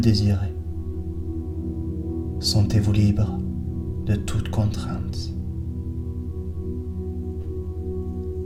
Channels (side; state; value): both; identical; correlation 1.00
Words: Sentez-vous libre de toute contrainte.